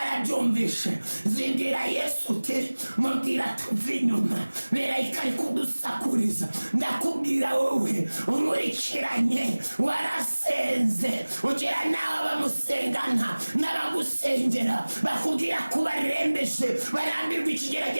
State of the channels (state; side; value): inverted; both; correlation -1.00